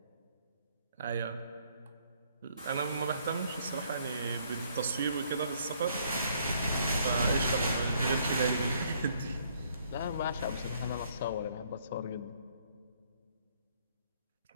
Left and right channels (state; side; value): inverted; both; correlation -0.66